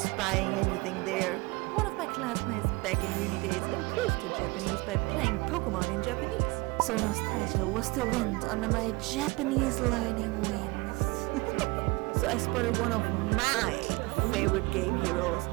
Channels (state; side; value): quieter; left; 24.1 dB